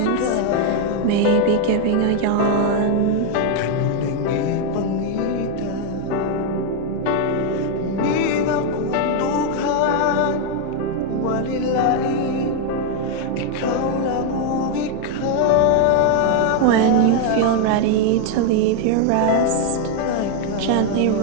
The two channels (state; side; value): different; both; correlation 0.01